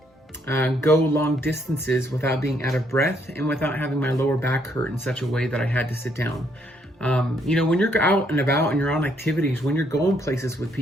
go long distances without being out of breath and without having my lower back hurt in such a way that I had to sit down. When you're out and about and you're on activities, when you're going places with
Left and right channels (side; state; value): both; normal; correlation 0.71